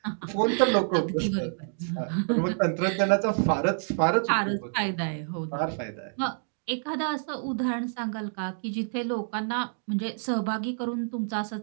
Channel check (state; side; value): silent; left; digital silence